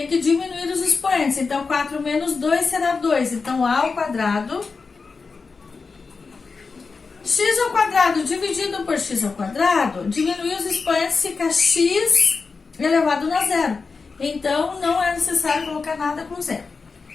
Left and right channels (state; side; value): quieter; right; 4.6 dB